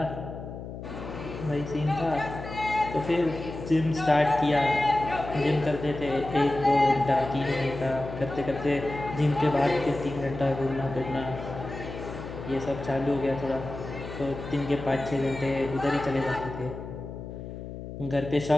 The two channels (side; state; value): left; noise; hum, 10 dB below the sound